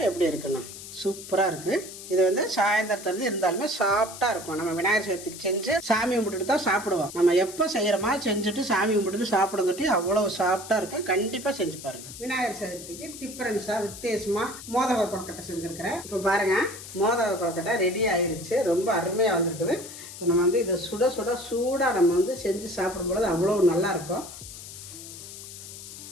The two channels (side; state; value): left; noise; hiss, 13 dB below the sound